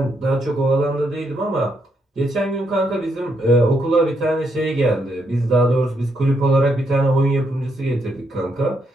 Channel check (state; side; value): normal; both; correlation 0.77